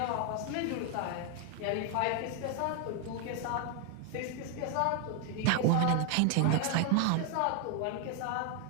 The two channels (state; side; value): different; both; correlation 0.01